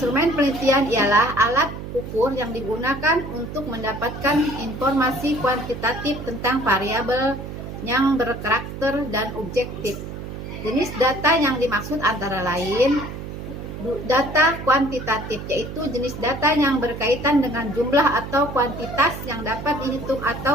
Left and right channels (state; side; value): noise; right; hum, 9 dB below the sound